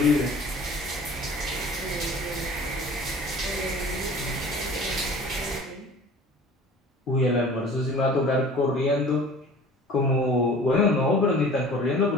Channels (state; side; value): normal; both; correlation 0.45